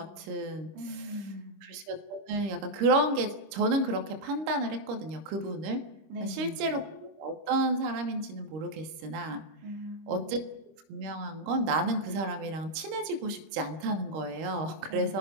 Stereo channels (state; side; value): late; left; 26 ms